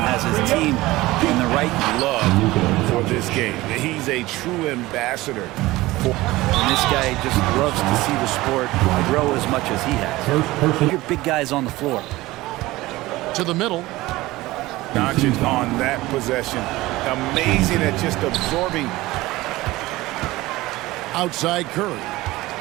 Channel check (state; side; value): quieter; left; 18.8 dB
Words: his team in the right Love for this game. He's a true ambassador. And this guy just loves to see the sport grow as much as he has. Your big guys on the floor. to the middle. Doncic on that possession. Amazing at just absorbing. Outside Curry.